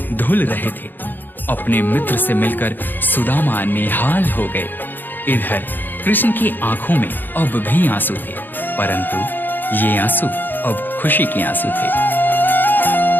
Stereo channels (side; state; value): right; late; 0.091 ms